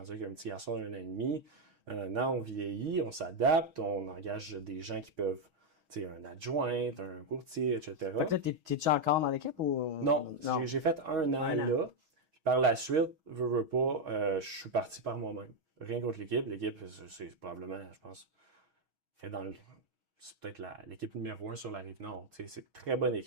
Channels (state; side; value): late; left; 6.3 ms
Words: avec un petit garçon d'1 an et demi. Un an, on vieillit, on s'adapte, on engage des gens qui peuvent, tu sais, un adjoint, un courtier, etc. Fait que là, t'es-tu encore dans l'équipe ou. Non, j'ai fait un an là. Puis par la suite, veux pas, je suis parti par moi-même. Rien contre l'équipe. L'équipe, c'est probablement, je pense, fait c'est peut-être l'équipe numéro 1 sur la Rive-Nord. Tu sais, c'est une très bonne